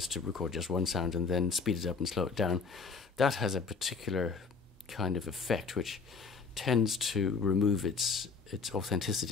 to record just one sound and then speed it up and slow it down. That has a particular kind of effect which tends to remove its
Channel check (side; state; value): right; quieter; 4.9 dB